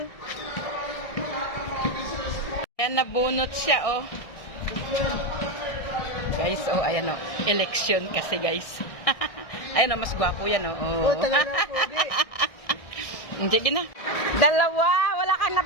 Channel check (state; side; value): late; right; 1.6 ms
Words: Ayan, nabunot siya, oh. Guys, oh, ayan, oh. Election kasi, guys. Ayan, oh, mas gwapo yan, oh. Oh, talaga po, di. Sige na. Dalawa, wala kang